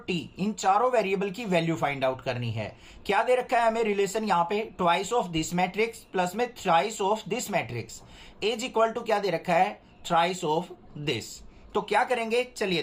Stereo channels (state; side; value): identical; both; correlation 1.00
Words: टी इन चारों वेरिएबल की वैल्यू फाइंड आउट करनी है। क्या दे रखा है हमें रिलेशन यहाँ पे, twice of this matrix plus में thrice of this matrix is equal to क्या दे रखा है, थ्राइस ऑफ दिस। तो क्या करेंगे चलिए